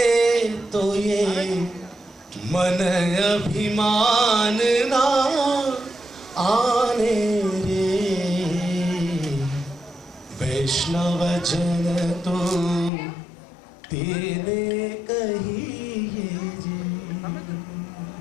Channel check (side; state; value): right; drops out; at 12.9 s